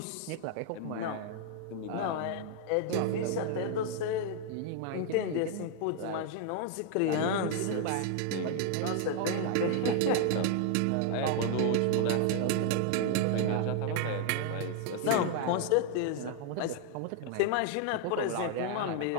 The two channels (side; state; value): both; different; correlation 0.00